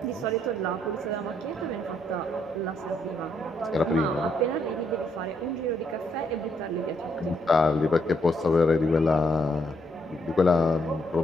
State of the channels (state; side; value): normal; both; correlation 0.74